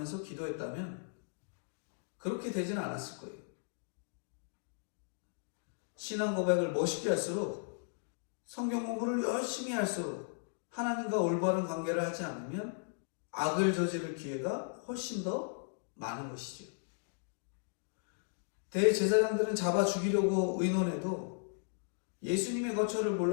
기도했다면 그렇게 되지는 않았을 거예요. 신앙 고백을 멋있게 할수록, 성경 공부를 열심히 할수록 하나님과 올바른 관계를 하지 않으면 악을 저지를 기회가 훨씬 더 많은 것이죠. 대제사장들은 잡아 죽이려고 의논해도 예수님의 거처를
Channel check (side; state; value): right; silent; digital silence